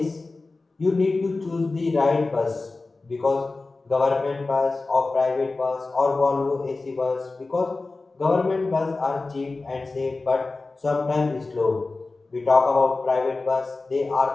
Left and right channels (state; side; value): quieter; right; 3.5 dB